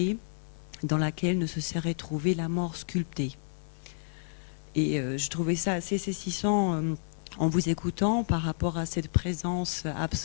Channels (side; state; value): right; silent; digital silence